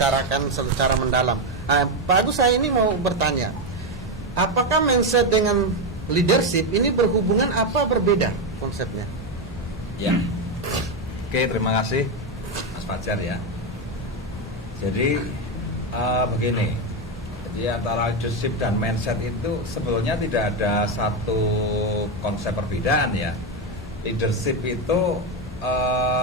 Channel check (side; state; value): both; normal; correlation 0.09